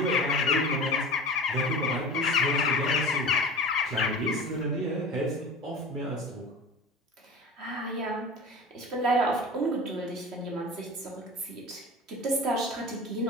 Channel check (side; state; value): both; normal; correlation 0.34